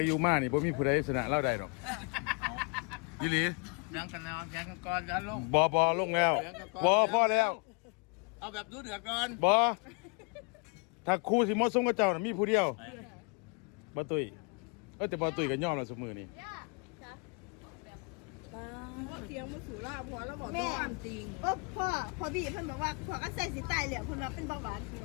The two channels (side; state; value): right; quieter; 34.0 dB